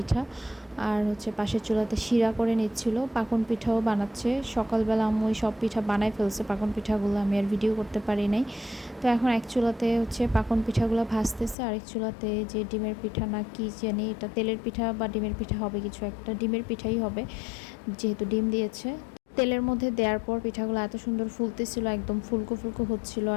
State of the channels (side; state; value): right; drops out; at 11.6 s